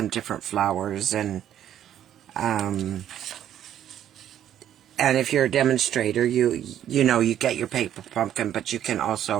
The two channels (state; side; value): quieter; left; 10.8 dB